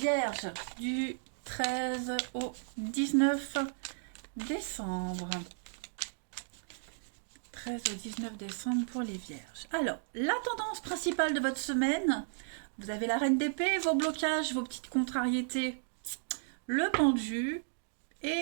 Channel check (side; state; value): left; silent; digital silence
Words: du 13 au 19 décembre. 13 au 19 décembre pour les Vierges. Alors, la tendance principale de votre semaine, vous avez la Reine d'épée, vos blocages, vos petites contrariétés, le pendu